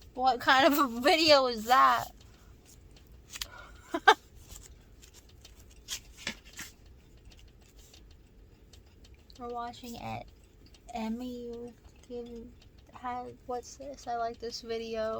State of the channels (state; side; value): identical; both; correlation 1.00